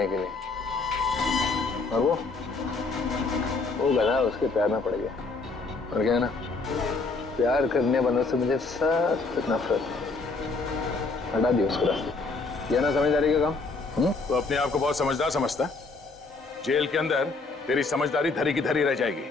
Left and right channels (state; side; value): quieter; right; 3.9 dB